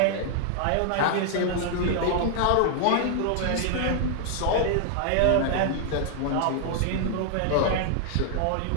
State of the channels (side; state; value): both; different; correlation 0.00